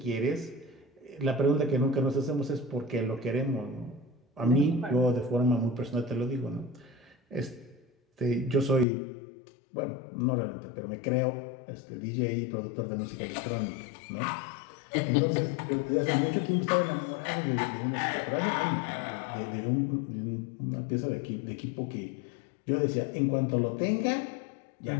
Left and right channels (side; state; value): right; drops out; at 8.8 s